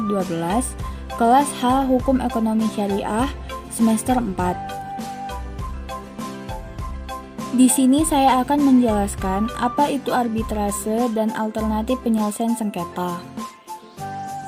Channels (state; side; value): identical; both; correlation 1.00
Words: kelas H Hukum Ekonomi Syariah, semester 4. Di sini saya akan menjelaskan apa itu arbitrase dan alternatif penyelesaian sengketa.